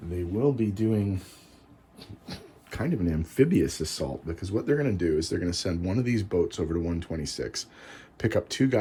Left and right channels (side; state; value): both; identical; correlation 1.00